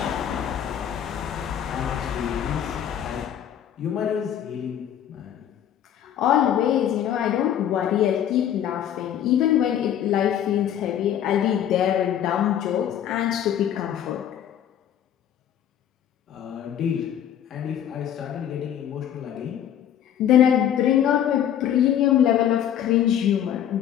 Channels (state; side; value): quieter; right; 10.1 dB